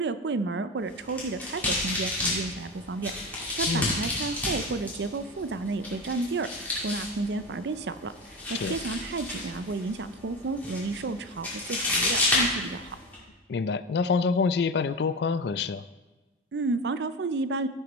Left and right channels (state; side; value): normal; both; correlation 0.24